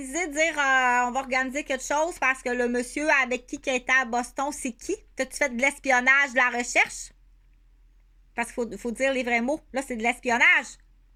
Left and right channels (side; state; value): both; identical; correlation 1.00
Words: de dire on va organiser quelque chose parce que le monsieur avec qui était à Boston, c'est qui? T'as-tu fait de l'espionnage, de la recherche? Parce qu'il faut dire les vrais mots. Là, c'est de l'espionnage.